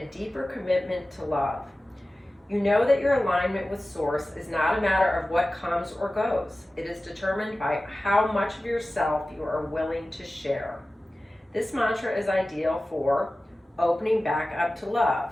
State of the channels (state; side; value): normal; both; correlation 0.96